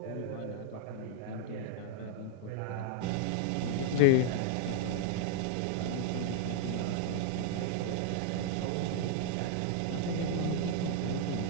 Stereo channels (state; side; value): different; both; correlation -0.01